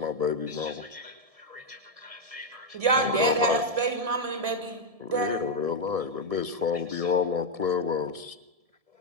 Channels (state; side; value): late; left; 1.7 ms